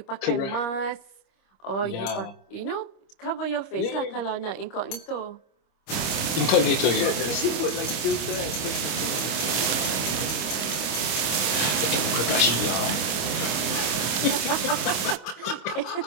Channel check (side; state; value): right; late; 25 ms